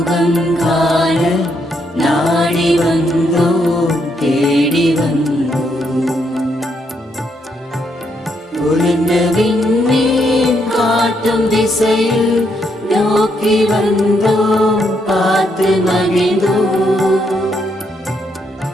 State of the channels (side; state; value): both; normal; correlation 0.76